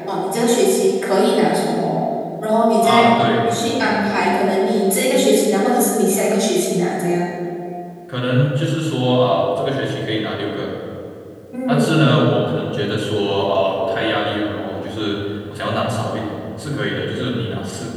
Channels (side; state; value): both; identical; correlation 1.00